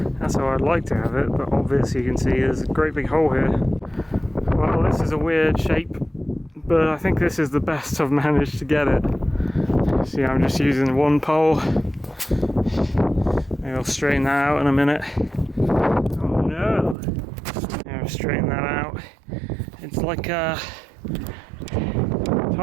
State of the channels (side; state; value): left; drops out; at 16.9 s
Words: That's how I'd like to have it, but obviously you can see there's a great big hole here. Well, this is a weird shape, but I think this is the best I've managed to get it. See, I'm just using one pole. Maybe I'll straighten that out in a minute. Oh no! I'll straighten that out. It's like